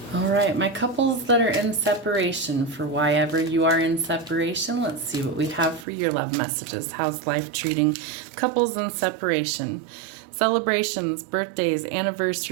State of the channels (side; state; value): left; drops out; at 5.9 s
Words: All right, my couples that are in separation, for why ever you are in separation, let's see what we have for your love messages. How's life treating couples in separation? Celebrations, birthdays,